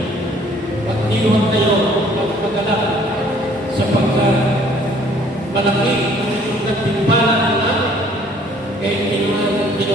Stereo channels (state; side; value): normal; both; correlation 0.58